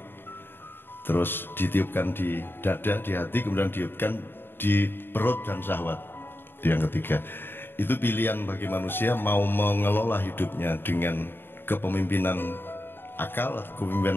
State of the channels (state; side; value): late; right; 0.10 ms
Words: terus ditiupkan di dada, di hati, kemudian ditiupkan di perut dan syahwat. Itu yang ketiga. Itu pilihan bagi manusia mau mengelola hidupnya dengan kepemimpinan akal atau